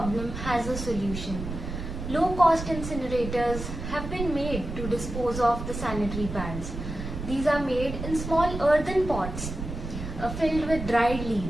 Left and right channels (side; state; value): right; noise; rumble, 7 dB below the sound